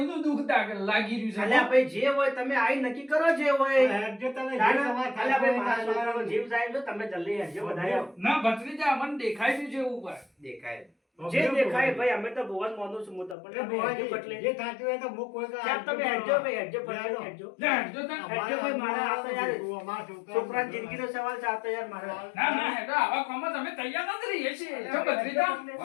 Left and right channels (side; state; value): right; drops out; at 13.4 s